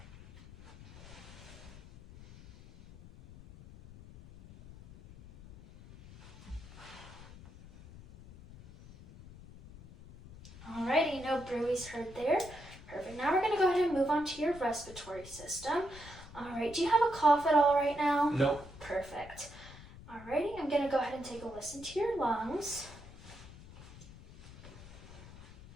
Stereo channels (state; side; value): noise; left; rumble, 17 dB below the sound